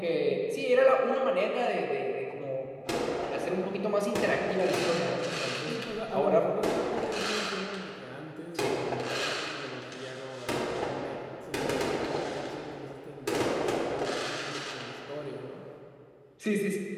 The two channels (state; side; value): identical; both; correlation 1.00